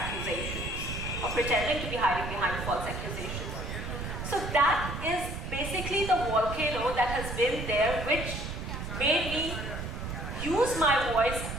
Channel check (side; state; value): right; noise; rumble, 6 dB below the sound